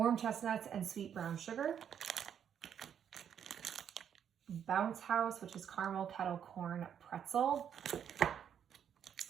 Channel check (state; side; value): quieter; left; 8.6 dB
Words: chestnuts and sweet brown sugar. Bounce House, which is caramel kettle corn pretzel.